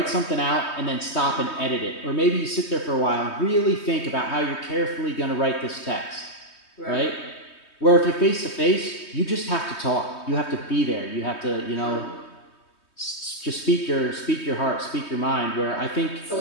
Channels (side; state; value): right; late; 3.2 ms